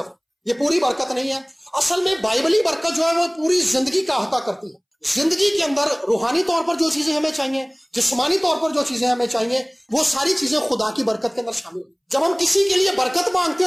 یہ پوری برکت نہیں ہے۔ اصل میں بائبلی برکت جو ہے وہ پوری زندگی کا احاطہ کرتی ہے۔ زندگی کے اندر روحانی طور پر جو چیزیں ہمیں چاہیے، جسمانی طور پر جو چیزیں ہمیں چاہیے، وہ ساری چیزیں خدا کی برکت کے اندر شامل ہیں۔ جب ہم کسی کے لیے برکت مانگتے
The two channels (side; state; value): both; identical; correlation 1.00